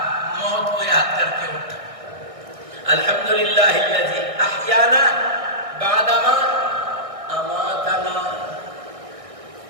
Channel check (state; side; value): late; left; 1.6 ms